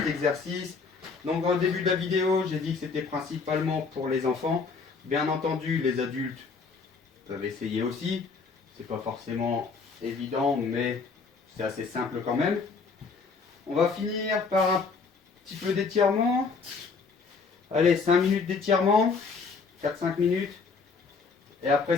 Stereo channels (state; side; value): quieter; right; 4.8 dB